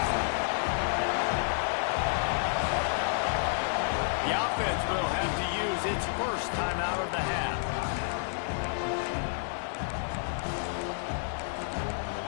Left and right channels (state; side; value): silent; right; digital silence